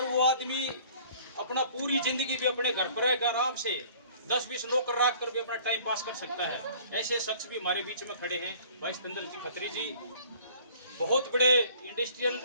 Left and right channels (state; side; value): inverted; both; correlation -0.52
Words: वो आदमी अपना पूरी जिंदगी भी अपने घर पर रहकर आराम से 10-20 नौकर रख कर भी अपना टाइम पास कर सकता है, ऐसे शख्स भी हमारे बीच में खड़े हैं। भाई सिकंदर जी खत्री जी बहुत बड़े इंडस्ट्रियल